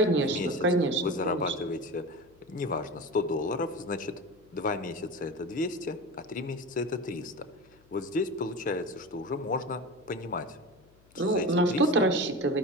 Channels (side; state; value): left; noise; hum, 29 dB below the sound